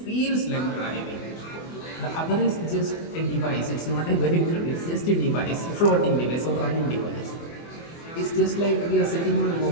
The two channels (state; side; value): late; right; 24 ms